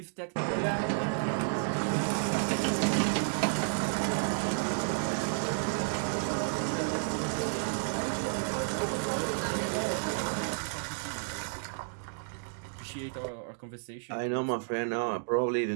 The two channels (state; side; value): silent; left; digital silence